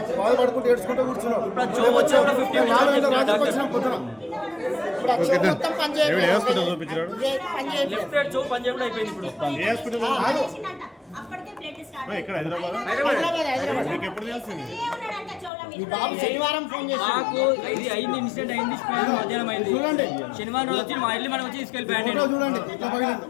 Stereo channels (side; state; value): right; drops out; at 15.5 s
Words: బాధపడుకుంటూ ఏడ్చుకుంటూ కూర్చున్నాం. వచ్చినాం పొద్దున. ఇక్కడ హైదరాబాద్ ఎప్పుడు తెలిసింది? బాబు శనివారం ఫోన్ చేసి మాకు ఇది అయింది, ఇన్సిడెంట్ అయింది, మధ్యాహ్నం అయింది. చూడండి, శనివారం వచ్చి మా ఇల్లు మనం వచ్చి తీసుకెళ్ళిపోయాడు. చూడండి.